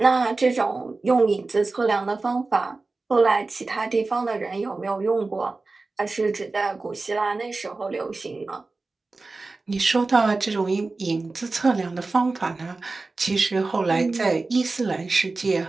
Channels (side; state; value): left; quieter; 3.6 dB